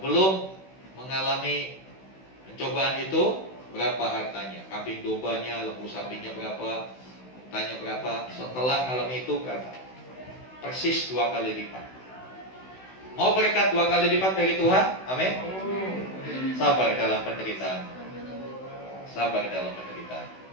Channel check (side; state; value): right; late; 16 ms